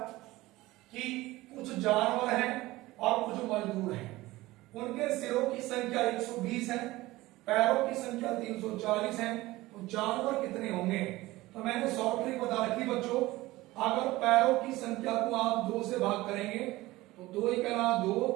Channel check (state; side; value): quieter; left; 18.7 dB